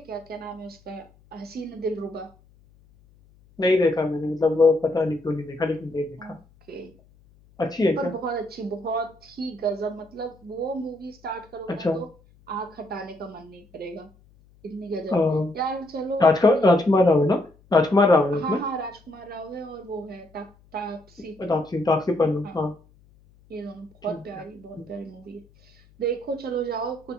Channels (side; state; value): left; noise; hum, 29 dB below the sound